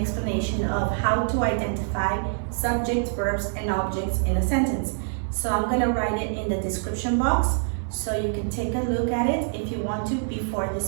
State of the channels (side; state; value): left; silent; digital silence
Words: of how to identify subjects, verbs, and objects in a sentence. So I'm going to write it in the description box so you can take a look at it if you want to before